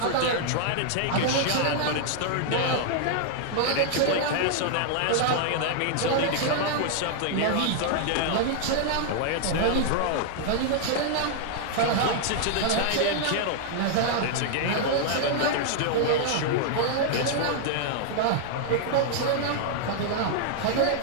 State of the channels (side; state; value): both; different; correlation -0.01